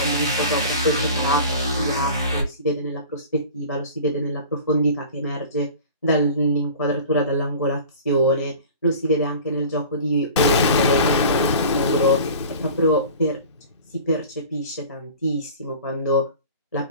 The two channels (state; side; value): inverted; both; correlation -0.40